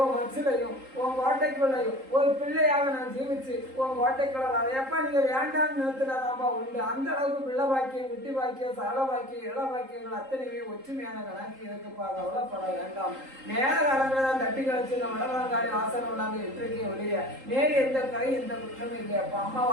மச்சிலையும் உன் கோட்டைக்குள்ளையும் ஒரு பிள்ளையாக நான் ஜீவிச்சு உன் கோட்டைக்குள்ள அதையப்பா நீங்க வேண்டாம்னு நிறுத்தினாதான்பா உண்டு. அந்த அளவுக்கு பிள்ளை பாக்கியம், குட்டி பாக்கியம், சகல பாக்கியம், இள பாக்கியங்கள் அத்தனையுமே ஒற்றுமையான கணக்கு இருக்குப்பா. கவலைப்பட வேண்டாம். நேர காலங்களை தான் தட்டி கழிச்சு இந்த மடவங்காரி வாசனை உள்ளாங்க இன்றைக்கே ஒழிய நேரு எந்த கரை எந்த குற்றமும் இல்லையாப்பா. அம்மா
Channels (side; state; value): left; late; 3.8 ms